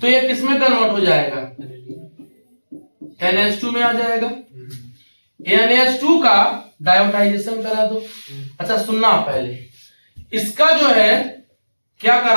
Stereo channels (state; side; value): inverted; both; correlation -1.00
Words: तो ये किस में कन्वर्ट हो जाएगा, NH2 में आ जाएगा। NH2 का डायोटाइजेशन करा दो। अच्छा सुनना, पहले इसका जो है क्या